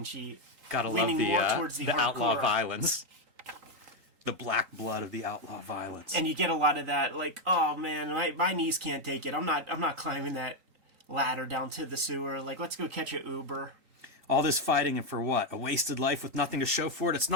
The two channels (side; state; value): left; late; 3.8 ms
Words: Gotta leaning love more towards the hardcore outlaw violence, the black blood of the outlaw violence." And you get a lot of that, like, "Oh man, my knees can't take it. I'm not climbing that ladder down to the sewer. Like, let's go catch an Uber." All this fighting and for what? A wasted life with nothing to show for it? It's